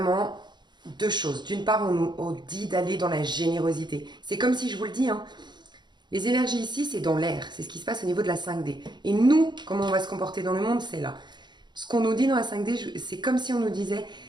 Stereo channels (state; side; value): late; left; 0.21 ms